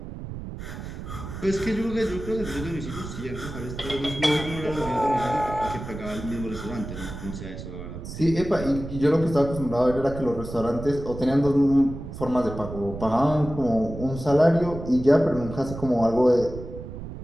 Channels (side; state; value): right; noise; rumble, 10 dB below the sound